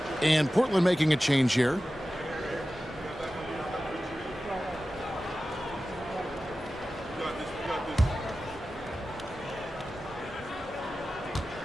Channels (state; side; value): normal; both; correlation 0.94